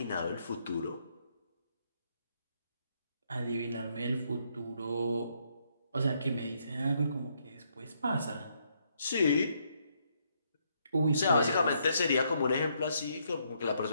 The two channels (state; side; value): inverted; both; correlation -0.74